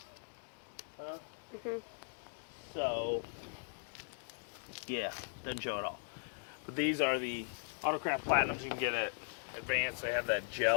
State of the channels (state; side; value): silent; right; digital silence